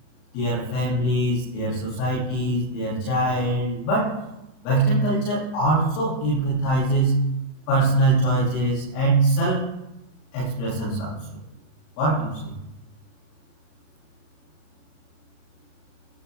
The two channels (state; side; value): late; right; 38 ms